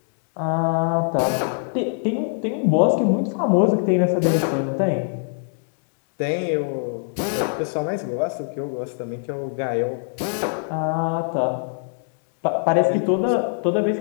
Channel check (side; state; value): right; silent; 63 dB below the other